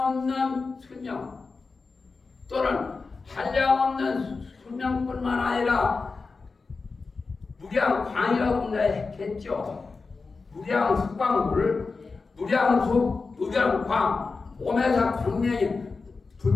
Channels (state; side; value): quieter; right; 4.3 dB